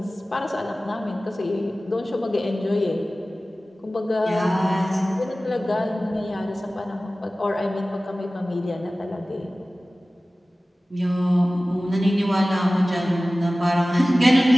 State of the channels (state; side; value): normal; both; correlation 0.97